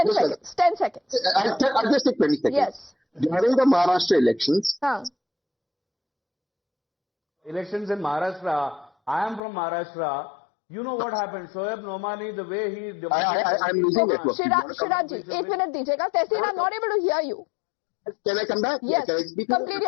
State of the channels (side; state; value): right; drops out; at 9.4 s